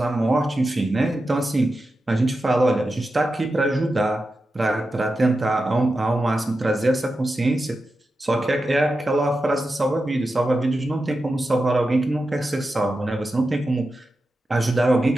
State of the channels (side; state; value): both; normal; correlation 0.91